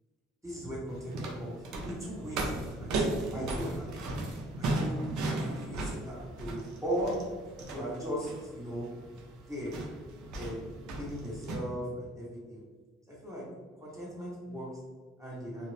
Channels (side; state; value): both; normal; correlation 0.56